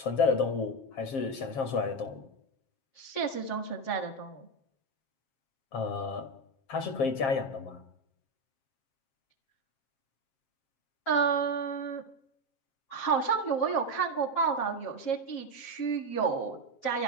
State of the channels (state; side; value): late; right; 7.4 ms